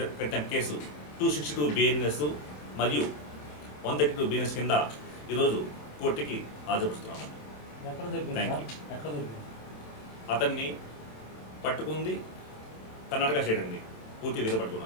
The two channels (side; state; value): right; late; 27 ms